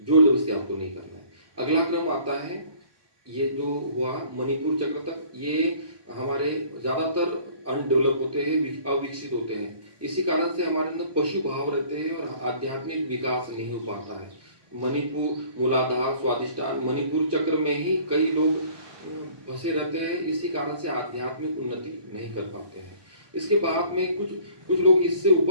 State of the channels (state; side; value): late; left; 1.2 ms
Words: जोर जबरदस्ती आपको नहीं करना है। अगला क्रम आता है, ये जो हुआ मणिपुर चक्र तक, ये हमारे ज़्यादातर अनडेवलप होते हैं, अविकसित होते हैं। इसी कारण से हमारे अंदर पशु भाव रहते हैं और आध्यात्मिक विकास नहीं हो पाता है। मणिपुर, मूलाधार, स्वादिष्टान, मणिपुर चक्र में ही कई लोग फंसे रहते हैं। इसी कारण से आध्यात्मिक उन्नति नहीं कर पाते हैं। इसके बाद में कुछ लोग इससे